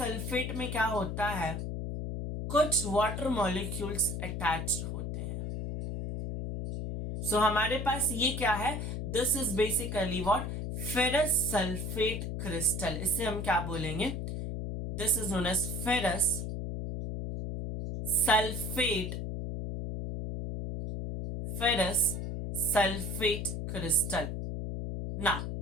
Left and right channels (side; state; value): left; noise; hum, 4 dB below the sound